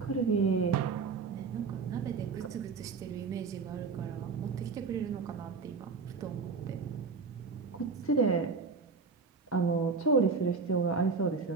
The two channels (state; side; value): quieter; left; 4.8 dB